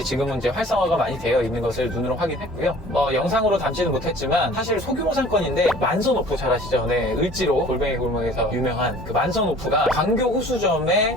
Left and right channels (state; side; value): normal; both; correlation 0.48